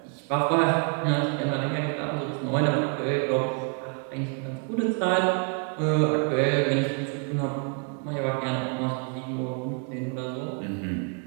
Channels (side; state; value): left; quieter; 39.5 dB